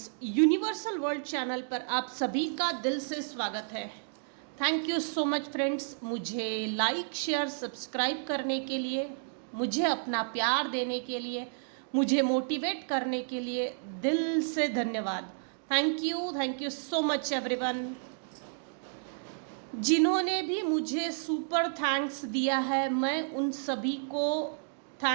universal world channel पर आप सभी का दिल से स्वागत है। Thank you so much friends, मुझे लाइक शेयर सब्सक्राइब करने के लिए, मुझे अपना प्यार देने के लिए, मुझे मोटिवेट करने के लिए दिल से धन्यवाद। Thank you so much everyone. जिन्होंने भी मुझे सुपर थैंक्स दिया है, मैं उन सभी को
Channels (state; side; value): silent; left; digital silence